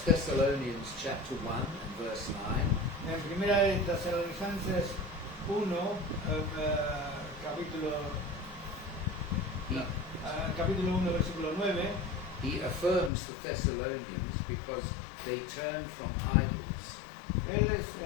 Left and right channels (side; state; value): right; drops out; at 13.1 s